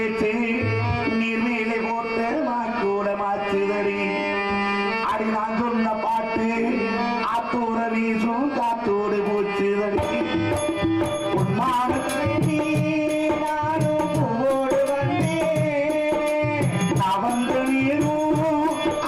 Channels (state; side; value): identical; both; correlation 1.00